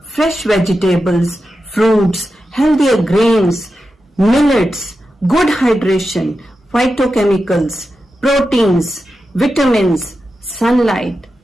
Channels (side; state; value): both; normal; correlation 0.90